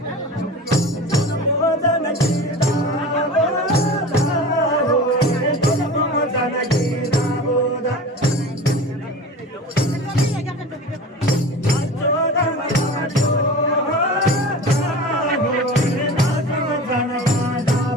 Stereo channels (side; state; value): both; normal; correlation 0.35